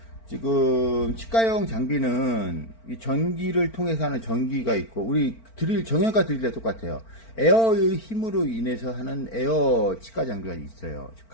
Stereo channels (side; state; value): right; late; 4.4 ms